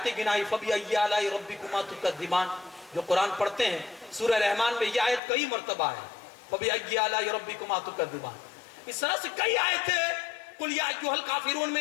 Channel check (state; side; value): drops out; right; at 5.2 s